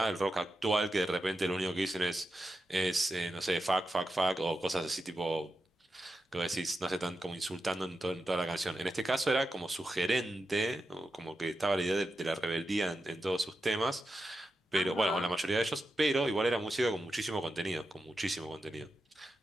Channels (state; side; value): normal; both; correlation 0.89